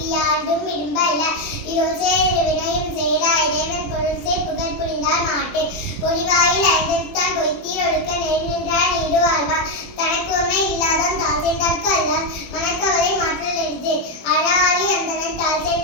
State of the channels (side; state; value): right; late; 21 ms